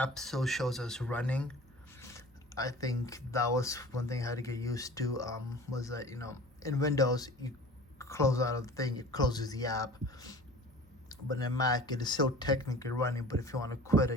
still shows us running. I think that was one thing I had to get used to. Was that in Windows you close out of the thing, it closes the app, but in Mac it is still technically running. But if you want to quit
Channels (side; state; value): both; normal; correlation 0.42